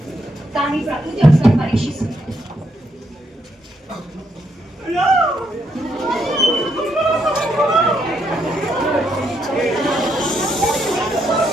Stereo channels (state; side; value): normal; both; correlation 0.77